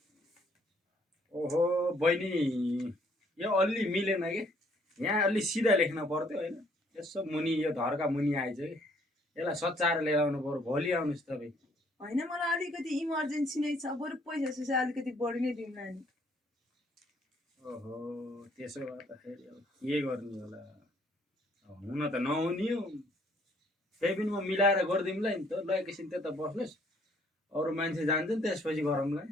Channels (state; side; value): normal; both; correlation 0.64